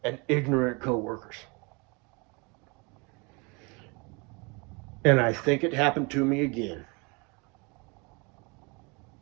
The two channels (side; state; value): left; quieter; 29.6 dB